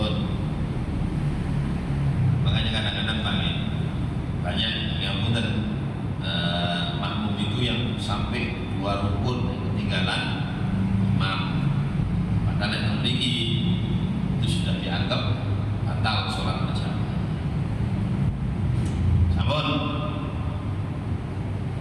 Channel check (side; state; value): both; identical; correlation 1.00